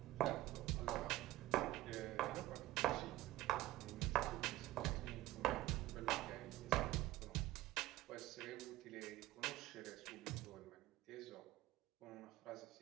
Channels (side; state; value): left; quieter; 16.3 dB